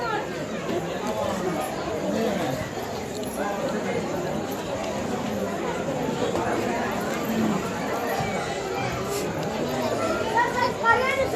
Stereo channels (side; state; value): both; identical; correlation 1.00